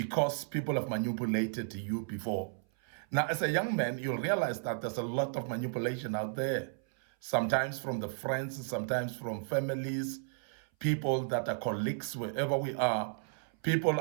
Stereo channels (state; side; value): silent; left; 55 dB below the other